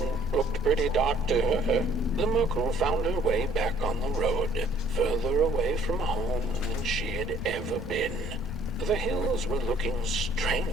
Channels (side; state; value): both; normal; correlation 0.59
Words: looked pretty dark to her. The Merkel found her way back on the road, further away from home than she had ever been. The hills were looking